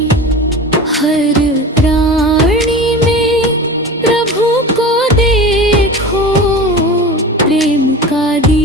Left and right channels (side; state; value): both; normal; correlation 0.33